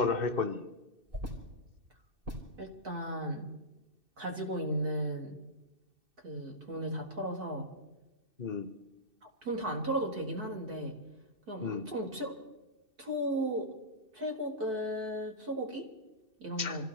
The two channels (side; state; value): left; late; 2.6 ms